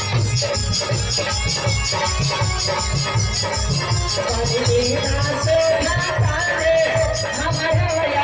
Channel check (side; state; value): both; identical; correlation 1.00